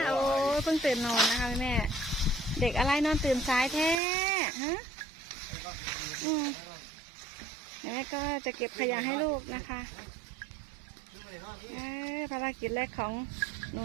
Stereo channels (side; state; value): left; drops out; at 4.0 s